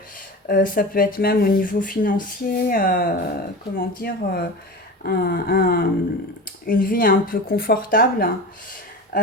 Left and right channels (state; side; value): normal; both; correlation 0.30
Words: Ça peut être même au niveau financier, comment dire, un- un- une vie un peu confortable.